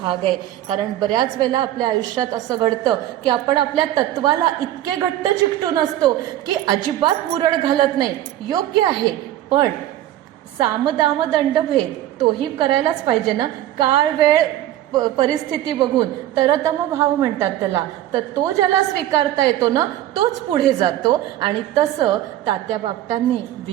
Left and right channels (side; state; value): left; quieter; 13.2 dB